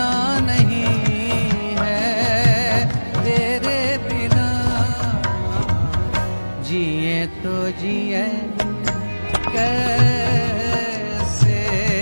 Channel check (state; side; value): inverted; both; correlation -1.00